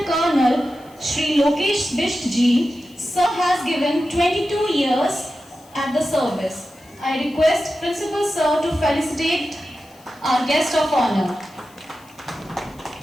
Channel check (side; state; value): left; noise; hiss, 28 dB below the sound